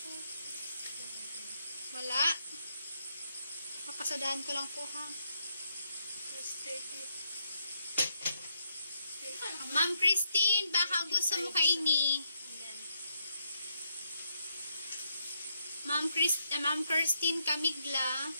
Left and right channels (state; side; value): inverted; both; correlation -0.78